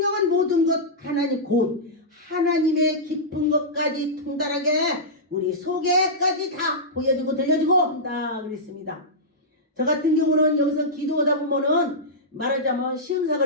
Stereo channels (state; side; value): normal; both; correlation -0.12